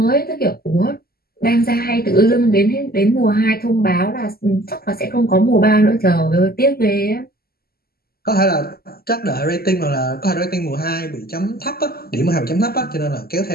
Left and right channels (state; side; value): late; right; 0.45 ms